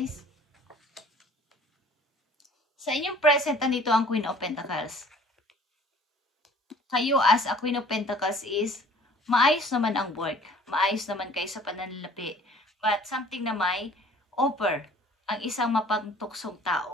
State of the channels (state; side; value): normal; both; correlation 0.52